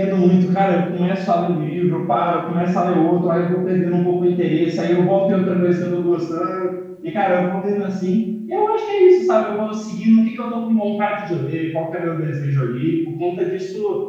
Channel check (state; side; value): identical; both; correlation 1.00